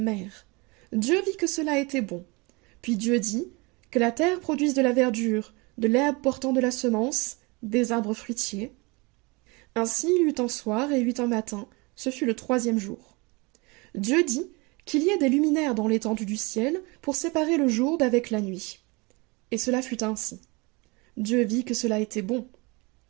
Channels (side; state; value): left; quieter; 27.1 dB